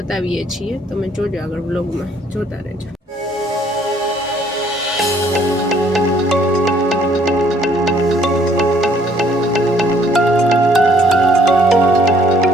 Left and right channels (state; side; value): normal; both; correlation 0.63